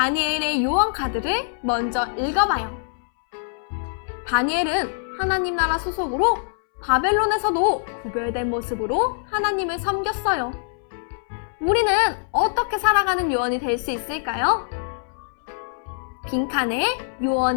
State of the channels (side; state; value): right; silent; 63 dB below the other